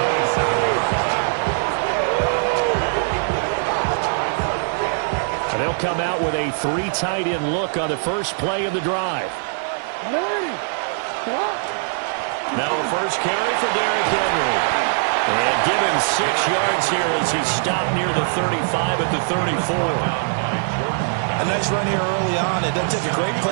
And they'll come out with a three tight end look on the first play of the drive. Now a first carry for Derrick Henry. And give him 6 yards here as he stopped near the 35 at the 34. A nice run here early on. It doesn't take a great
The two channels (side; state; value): left; silent; 60 dB below the other